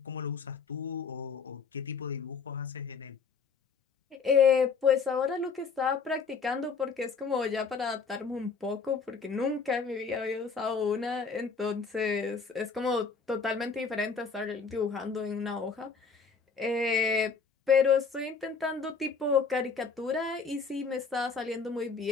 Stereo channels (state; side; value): quieter; right; 5.3 dB